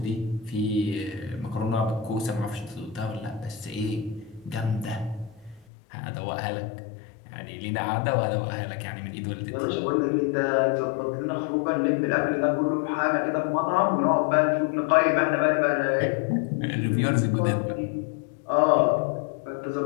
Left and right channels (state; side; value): drops out; right; at 5.7 s